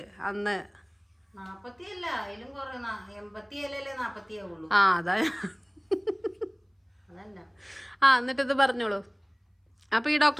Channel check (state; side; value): identical; both; correlation 1.00